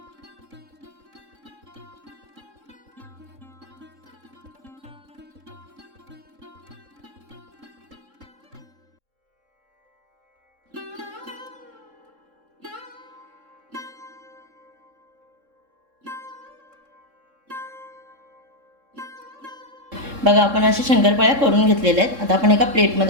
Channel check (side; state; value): left; late; 3.7 ms